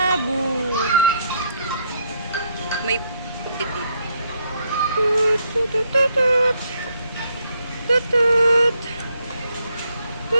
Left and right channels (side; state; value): both; inverted; correlation -0.73